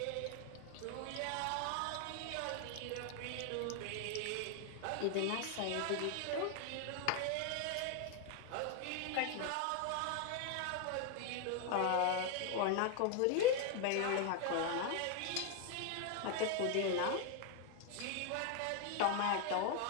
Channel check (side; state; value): both; different; correlation 0.01